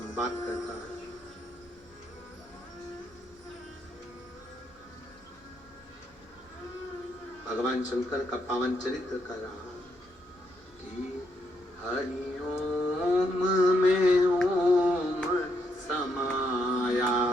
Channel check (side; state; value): both; normal; correlation 0.77